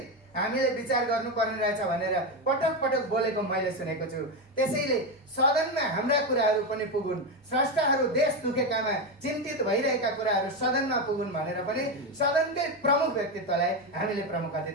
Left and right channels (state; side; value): normal; both; correlation 0.11